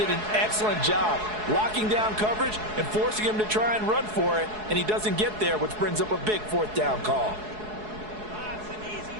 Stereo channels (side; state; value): left; late; 4.7 ms